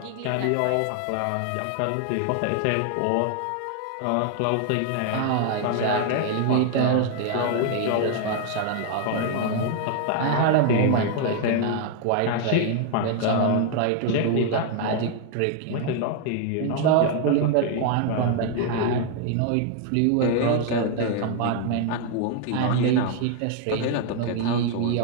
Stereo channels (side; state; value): both; different; correlation 0.00